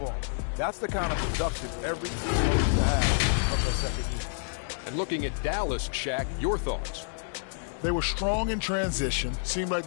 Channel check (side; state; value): right; silent; 59 dB below the other